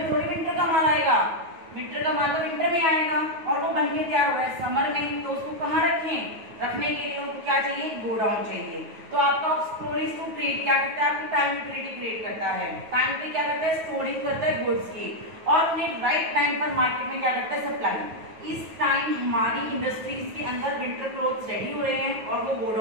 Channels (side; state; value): left; late; 9.3 ms